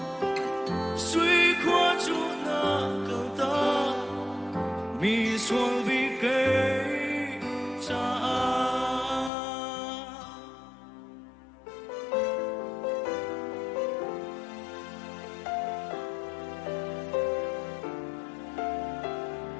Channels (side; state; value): right; drops out; at 9.3 s